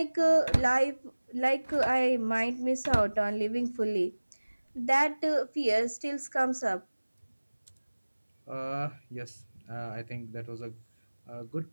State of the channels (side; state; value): both; inverted; correlation -1.00